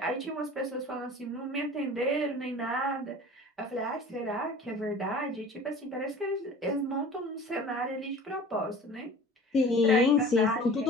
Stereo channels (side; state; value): both; normal; correlation 0.42